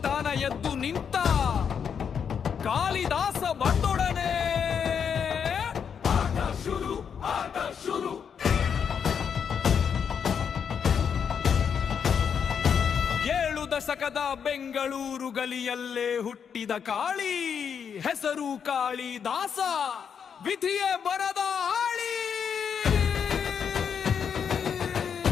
ಎದ್ದು ನಿಂತ ಕಾಳಿದಾಸ ಬಂದೊಡನೆ ಆಟ ಶುರು. ಏಳು ದಶಕದ ಬೆಂಗಳೂರು ಗಲಿಯಲ್ಲೇ ಹುಟ್ಟಿದ ಕಾಳಿ, ಹೆಸರು ಕಾಳಿದಾಸ, ವಿಧಿಯೇ ಬರದ ಆಳಿ.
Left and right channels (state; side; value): quieter; right; 7.2 dB